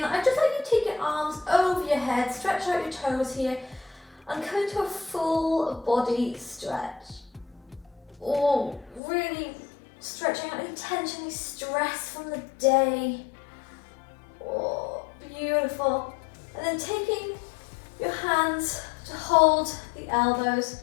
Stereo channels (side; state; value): right; drops out; at 9.0 s